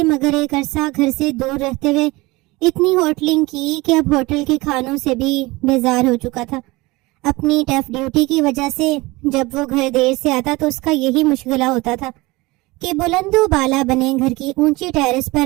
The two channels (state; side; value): quieter; left; 22.2 dB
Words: مگر ایک عرصہ گھر سے دور رہتے ہوئے اتنی ہوٹلنگ کی کہ اب ہوٹل کے کھانوں سے بھی بیزار ہو چکا تھا. اپنی ٹف ڈیوٹی کی وجہ سے جب وہ گھر دیر سے آتا تو اس کا یہی مشغلہ ہوتا تھا کہ بلند و بالا بنے گھر کی اونچی ٹیرس